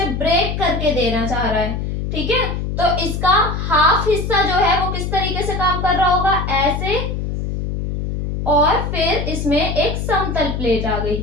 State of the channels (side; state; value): left; noise; hum, 3 dB below the sound